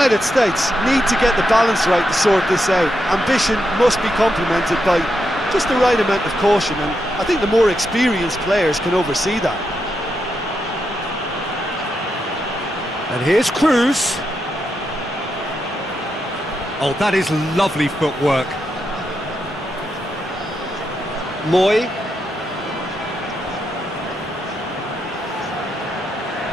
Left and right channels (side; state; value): both; normal; correlation 0.84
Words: States need to get the balance right to sort this out. Ambition must be complemented by just the right amount of caution, and I think the more experienced players can oversee that. And here's Cruz. Oh, that is lovely footwork. Moy.